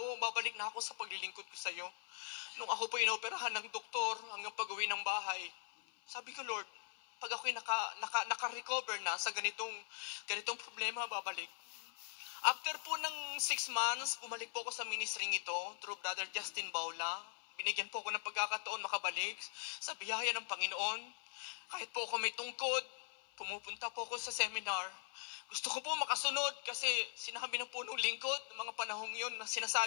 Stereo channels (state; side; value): silent; right; 50 dB below the other